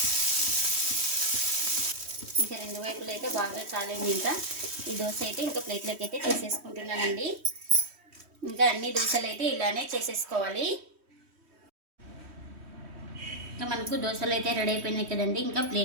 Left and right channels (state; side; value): late; left; 3.1 ms